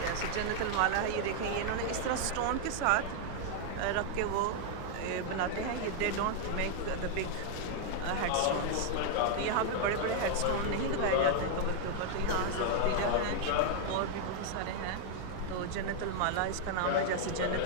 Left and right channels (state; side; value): different; both; correlation 0.00